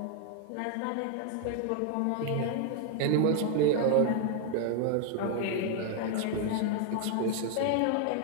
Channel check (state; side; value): different; both; correlation 0.00